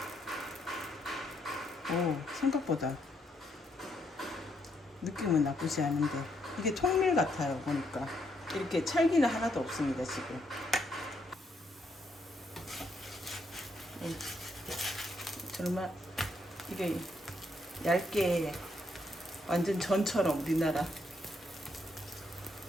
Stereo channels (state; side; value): normal; both; correlation 0.75